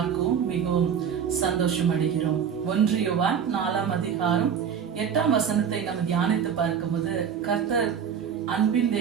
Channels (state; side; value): quieter; left; 7.6 dB